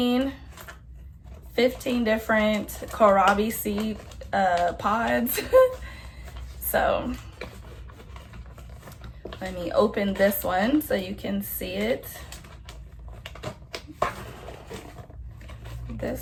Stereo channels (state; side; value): identical; both; correlation 1.00